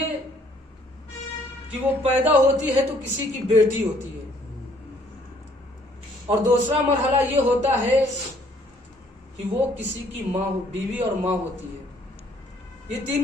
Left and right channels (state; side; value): normal; both; correlation 0.62